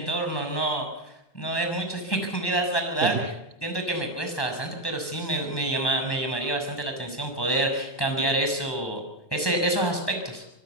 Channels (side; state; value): right; late; 1.1 ms